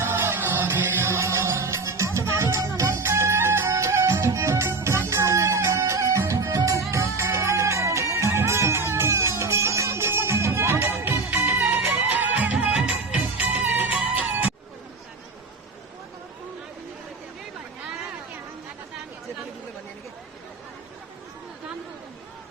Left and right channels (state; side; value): quieter; left; 3.8 dB